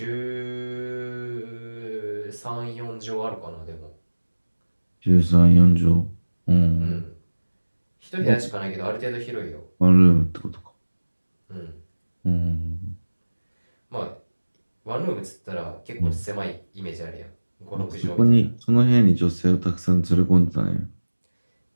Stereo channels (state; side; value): inverted; both; correlation -1.00